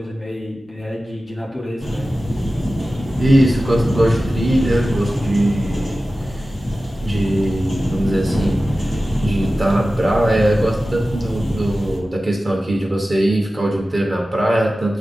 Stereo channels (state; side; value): normal; both; correlation 0.95